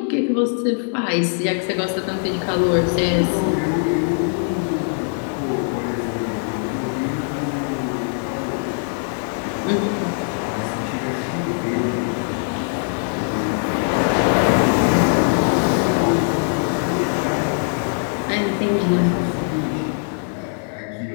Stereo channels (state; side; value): silent; right; 64 dB below the other